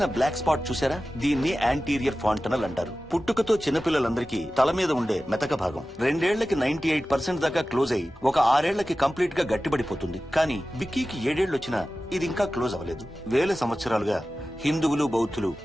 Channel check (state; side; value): normal; both; correlation 0.95